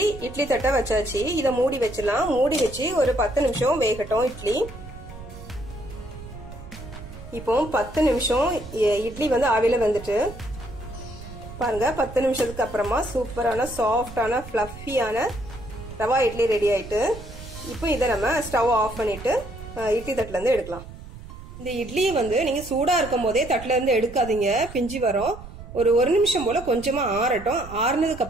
இட்லி தட்டை வச்சாச்சு. இதை மூடி வச்சிடலாம். மூடி வச்சு ஒரு 10 நிமிஷம் வேகட்டும் இட்லி. இப்போ 10 நிமிஷம் இட்லி வந்து ஆவியில வந்துட்டு பாருங்க 10 நிமிஷத்துக்கு அப்புறமா சூப்பரான சாஃப்டான ஃப்ளஃபியான ரவா இட்லி ரெடி ஆயிட்டு. இப்போ இதை நம்ம ஸ்டவ் ஆஃப் பண்ணிட்டு இட்லி தட்டுல இருந்து எடுக்கலாம். இந்த இட்லியை வந்து நீங்க சூடா இருக்கும் போதே தட்டுல இருந்து எடுக்காதீங்க, பிஞ்சி வரும். ஒரு நிமிஷம் போல கொஞ்சமா ஆறட்டும். ஆறுனதுக்கு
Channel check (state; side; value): noise; right; rumble, 14 dB below the sound